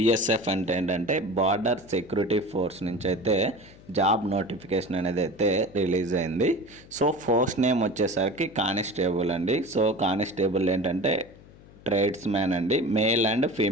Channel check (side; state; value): left; noise; hum, 22 dB below the sound